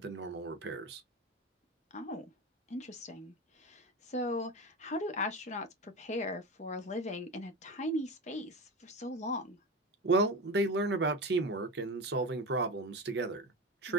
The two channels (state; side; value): normal; both; correlation 0.24